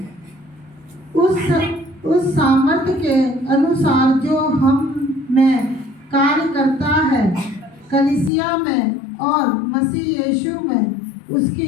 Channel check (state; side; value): drops out; right; at 8.3 s